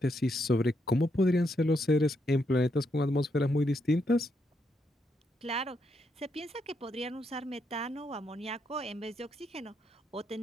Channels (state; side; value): normal; both; correlation 0.79